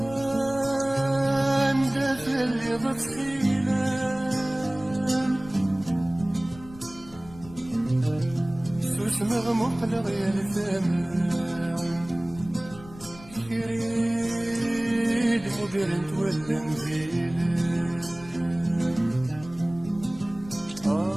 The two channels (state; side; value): noise; left; rumble, 19 dB below the sound